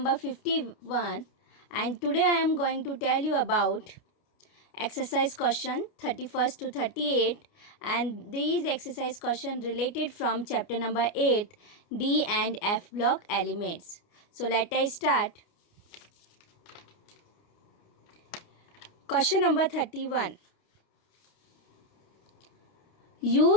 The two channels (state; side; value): late; right; 29 ms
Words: 51, and today I am going to tell you about exercise question 31st to 38, and these exercise question related from chapter number 8, D and F block elements. So let us start. Question number 31.